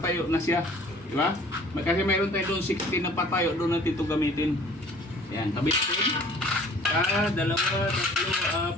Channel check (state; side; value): normal; both; correlation 0.51